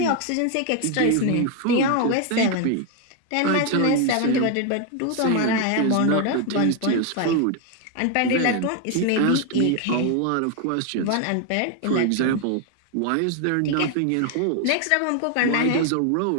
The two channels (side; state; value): both; different; correlation 0.01